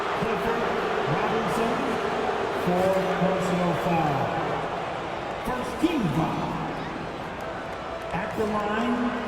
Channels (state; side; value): identical; both; correlation 1.00